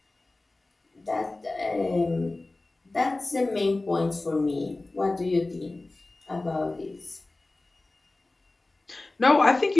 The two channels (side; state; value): right; quieter; 3.0 dB